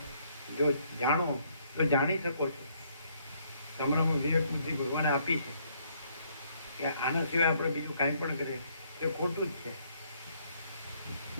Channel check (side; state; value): both; inverted; correlation -0.68